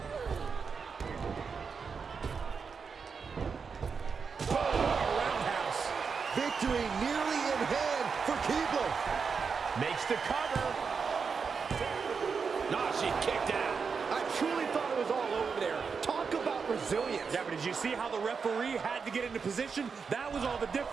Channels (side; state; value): left; quieter; 5.6 dB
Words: Roundhouse. Victory nearly in hand for Keibler. Makes the cover. Nah, she kicked out. I truly thought it was all over there. Talk about resilience. Yeah, but did you see how the referee had to get into position? That was all the